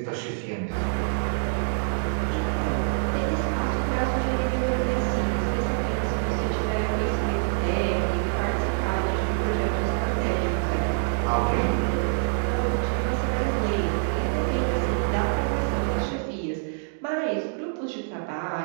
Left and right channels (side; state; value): left; silent; digital silence